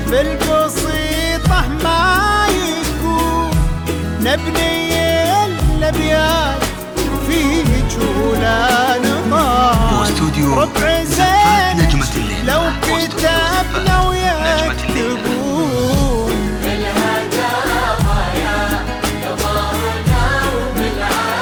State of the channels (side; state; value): both; identical; correlation 1.00